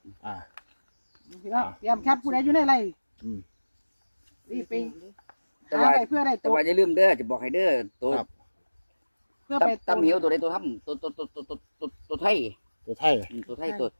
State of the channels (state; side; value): inverted; both; correlation -1.00